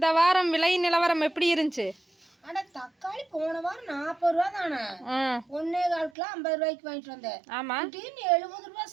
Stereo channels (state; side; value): drops out; left; at 6.1 s